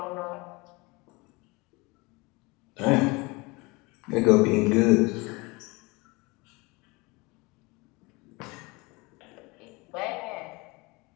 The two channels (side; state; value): right; quieter; 25.3 dB